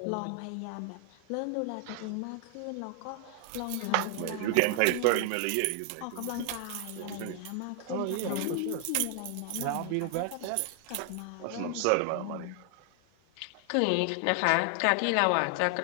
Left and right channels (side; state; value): both; different; correlation 0.00